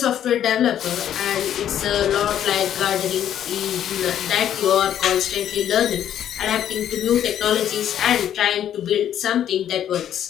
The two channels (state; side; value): quieter; right; 10.4 dB